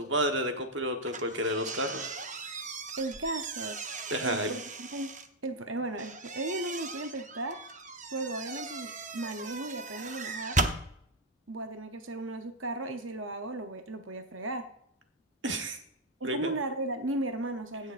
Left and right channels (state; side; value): normal; both; correlation 0.02